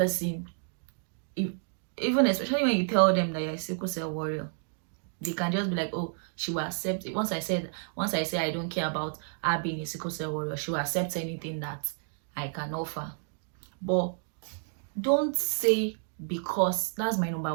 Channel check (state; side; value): silent; left; 58 dB below the other